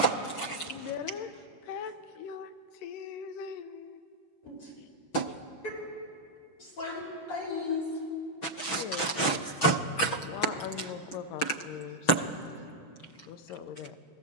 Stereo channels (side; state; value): right; late; 6.2 ms